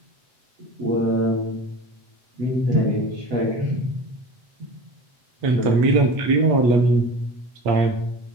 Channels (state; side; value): late; left; 8.4 ms